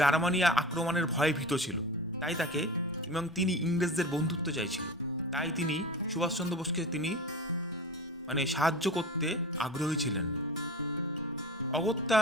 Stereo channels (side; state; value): both; normal; correlation 0.32